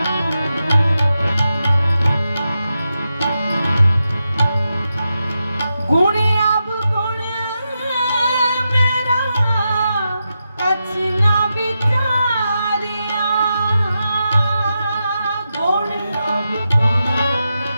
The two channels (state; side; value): inverted; both; correlation -0.88